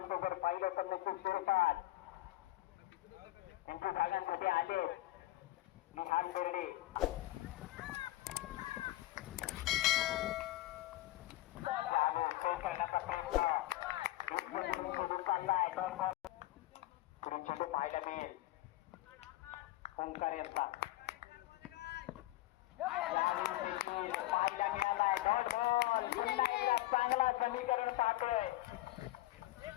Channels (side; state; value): right; quieter; 17.4 dB